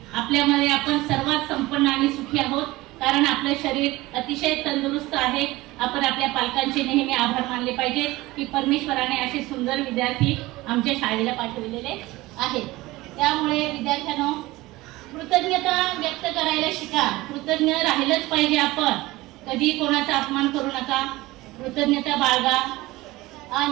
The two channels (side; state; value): left; quieter; 19.5 dB